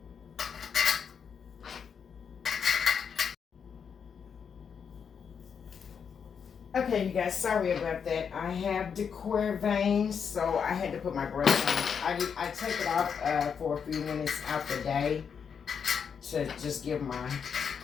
Okay, you guys, sorry about that. I have decor veins, so I had to put my brakes on. I take it off for a few minutes out the day to just give my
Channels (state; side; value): quieter; right; 6.9 dB